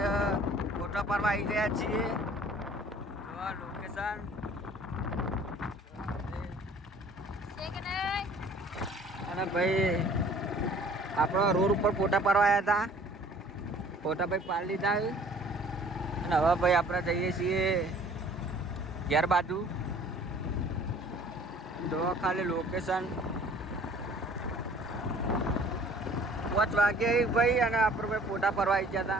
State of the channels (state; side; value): normal; both; correlation 0.52